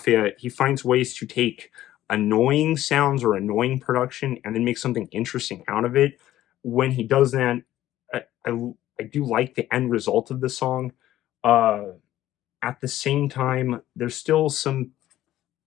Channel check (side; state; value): right; quieter; 13.8 dB